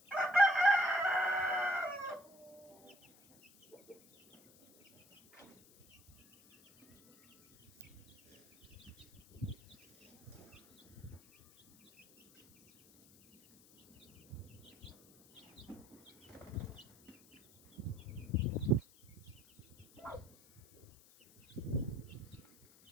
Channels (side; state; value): left; noise; hiss, 26 dB below the sound